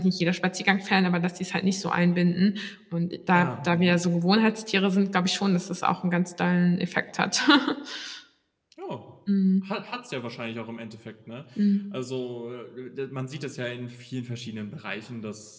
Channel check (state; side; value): identical; both; correlation 1.00